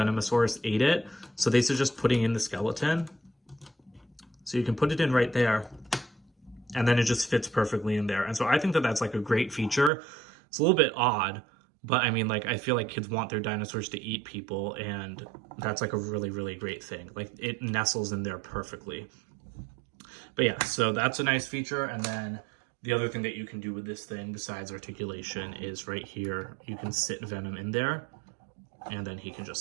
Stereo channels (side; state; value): left; drops out; at 9.9 s